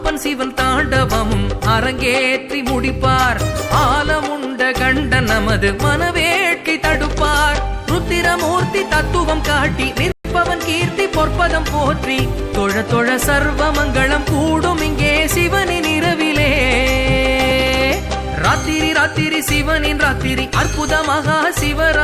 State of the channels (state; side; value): identical; both; correlation 1.00